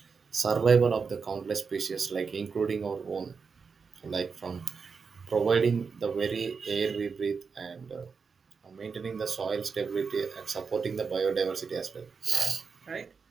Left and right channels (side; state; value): left; quieter; 5.4 dB